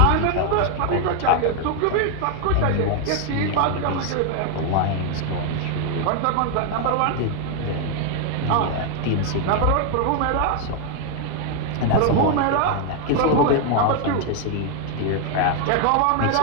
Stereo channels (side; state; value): both; different; correlation 0.00